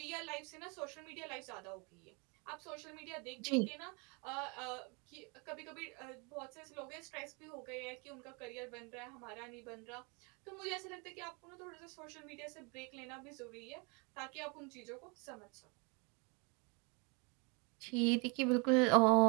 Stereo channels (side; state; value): left; quieter; 31.9 dB